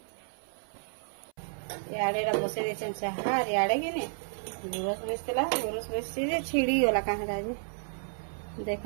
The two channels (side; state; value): left; silent; 57 dB below the other